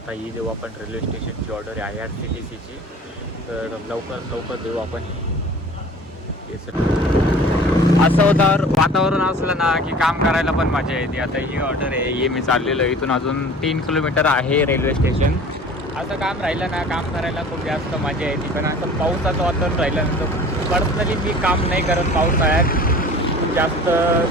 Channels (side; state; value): both; normal; correlation 0.44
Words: ही देऊ आपण रेल्वे स्टेशनची ऑर्डर आहे IRCTCची. तर लवकर देऊ आपण. असं होतं वातावरण असलं ना की काम करायला पण मजा येते. आता ही ऑर्डर आहे, ही मी चाललेलो. इथून अजून 3 किलोमीटर आहे रेल्वे स्टेशन. असं काम राहिलं ना, काम करायला खूप जास्त मजा येते. पण असं पावसाचं वातावरण राहिलं ना, तर पर्सनली मी काम नाही करत पावसाळ्यात. जास्त